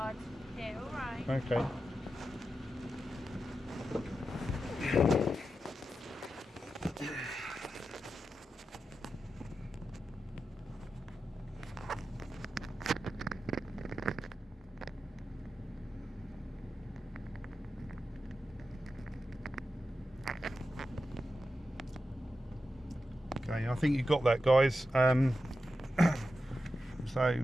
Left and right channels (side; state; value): both; normal; correlation 0.90